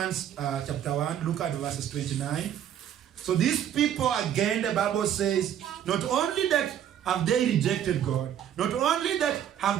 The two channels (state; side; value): quieter; left; 10.1 dB